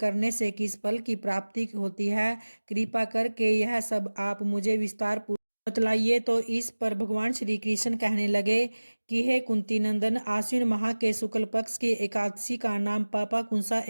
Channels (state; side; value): inverted; both; correlation -1.00